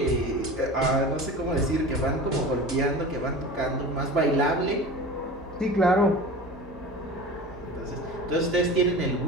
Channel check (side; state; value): both; normal; correlation 0.34